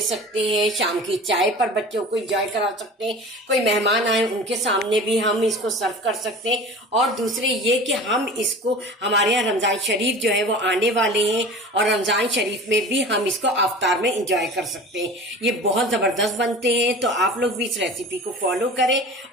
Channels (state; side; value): normal; both; correlation 0.38